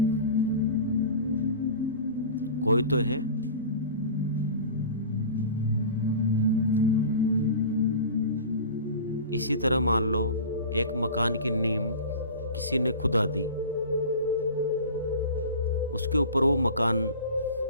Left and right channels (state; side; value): inverted; both; correlation -0.36